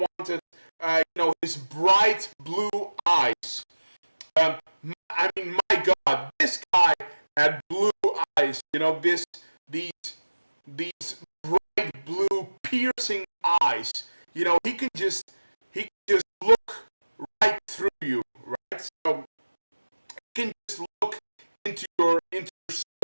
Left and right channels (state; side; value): inverted; both; correlation -1.00